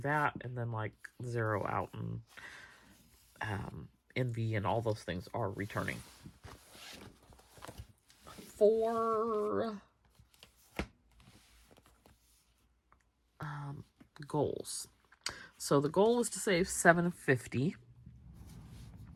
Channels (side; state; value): both; identical; correlation 1.00